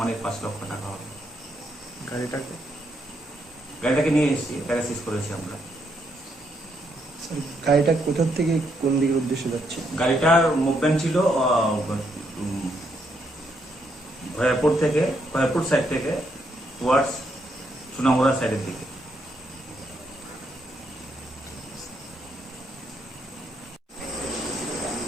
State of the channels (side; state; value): both; normal; correlation 0.76